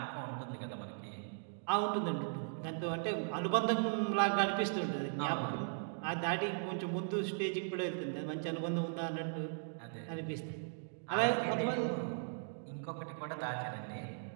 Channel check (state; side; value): silent; left; digital silence